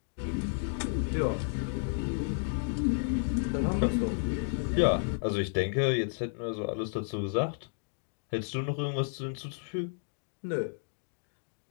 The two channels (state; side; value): silent; right; digital silence